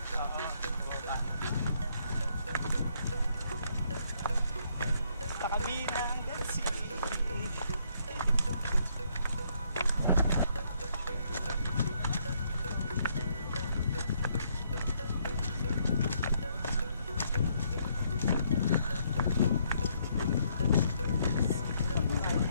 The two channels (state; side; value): inverted; both; correlation -0.71